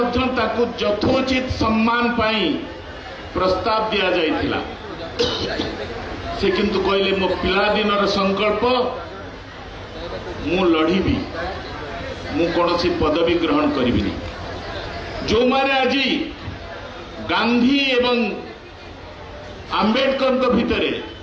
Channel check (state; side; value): identical; both; correlation 1.00